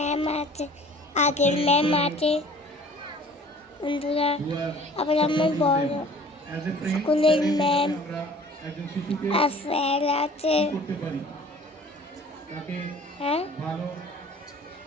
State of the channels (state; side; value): normal; both; correlation 0.49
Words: আছে, আগের ম্যাম আছে বন্ধুরা। আবার আমার বড় স্কুলের ম্যাম আর স্যার আছে। হ্যাঁ,